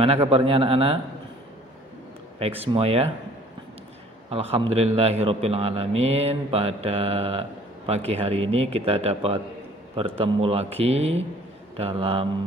kabarnya anak-anak? Baik semua ya? Alhamdulillahirabbil alamin. Pada pagi hari ini kita dapat bertemu lagi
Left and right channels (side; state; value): both; normal; correlation 0.54